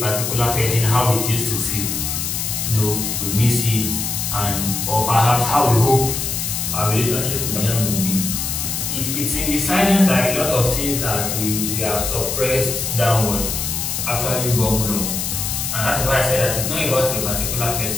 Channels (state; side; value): noise; left; hiss, 2 dB below the sound